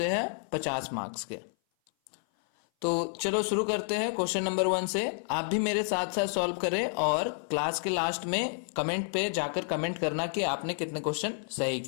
हैं 50 मार्क्स के। तो चलो शुरू करते हैं क्वेश्चन नंबर 1 से। आप भी मेरे साथ साथ सॉल्व करें और क्लास के लास्ट में कमेंट पे जाकर कमेंट करना कि आपने कितने क्वेश्चन सही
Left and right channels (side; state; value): right; silent; 56 dB below the other